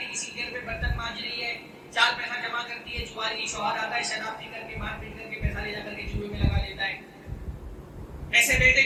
کسی گھر پہ برتن مانج رہی ہے, 4 پیسہ جمع کرتی ہے, جواری شوہر آتا ہے شراب پی کر کے مار پیٹ کر کے پیسہ لے جا کر کے جوئے میں لگا لیتا ہے. ایسے بیٹے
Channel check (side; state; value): both; identical; correlation 1.00